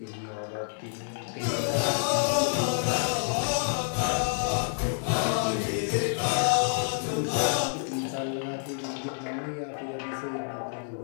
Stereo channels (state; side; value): silent; right; 58 dB below the other